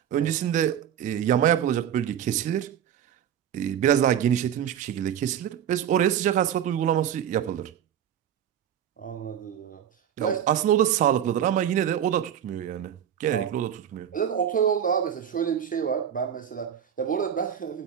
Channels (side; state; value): left; quieter; 9.6 dB